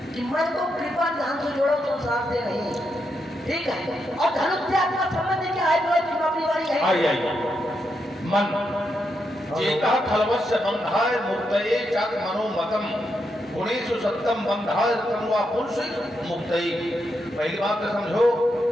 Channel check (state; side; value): normal; both; correlation 0.82